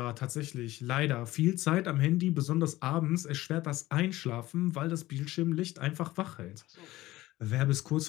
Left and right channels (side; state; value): right; quieter; 17.2 dB